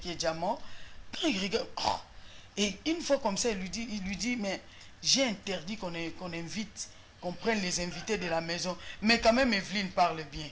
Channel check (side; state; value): both; identical; correlation 1.00